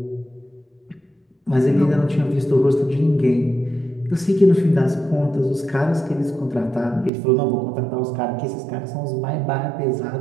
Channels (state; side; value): drops out; left; at 7.1 s